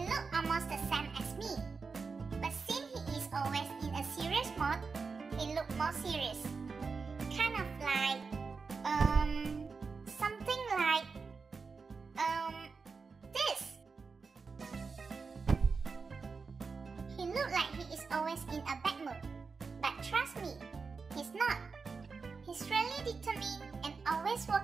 looks almost the same as me, but since he is always in a serious mode, he looks more serious. Kind of like, something like, this. He looks like he is always in a bad mood, but trust me, he's not. He's really determined and always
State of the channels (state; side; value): quieter; left; 4.8 dB